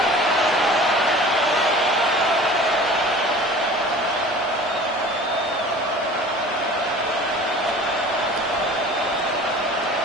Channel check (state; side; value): normal; both; correlation 0.43